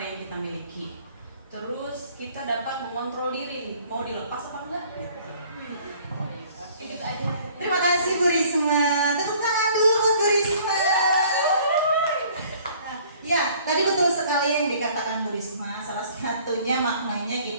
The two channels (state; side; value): inverted; both; correlation -0.55